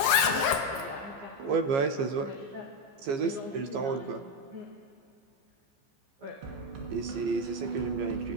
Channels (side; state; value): left; late; 15 ms